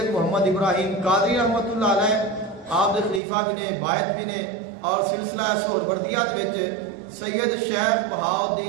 محمد ابراہیم قادری رحمت اللہ علیہ آپ دے خلیفہ بھی نے، باعث بھی نے، اور سلسلہ سہروردیہ دے وچ سید شیخ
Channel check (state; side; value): drops out; left; at 3.2 s